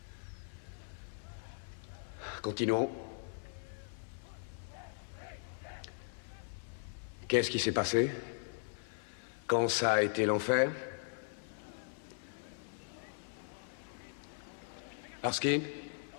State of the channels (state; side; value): silent; right; 52 dB below the other